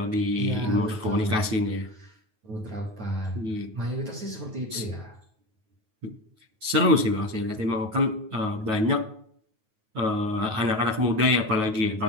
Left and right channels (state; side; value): late; left; 9.3 ms